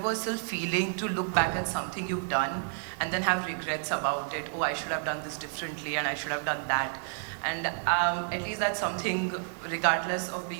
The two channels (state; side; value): silent; left; 58 dB below the other